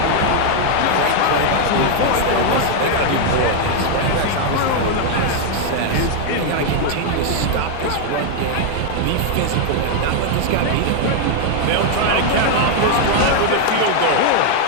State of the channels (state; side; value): different; both; correlation 0.00